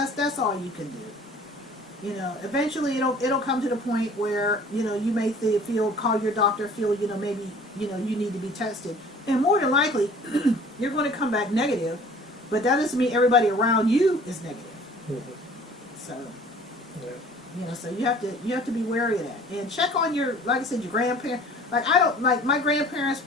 all you can do. You know, eventually it'll come to the point where you may call your doctor, feel maybe you need to be tested, and more than likely you're going to come back negative, but that doesn't mean everybody around you is negative. Mm-hmm. So. Yeah. So you have to be wary of that, and check on your, like I said, your grandparents. Like my grandparents,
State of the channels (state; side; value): normal; both; correlation 0.49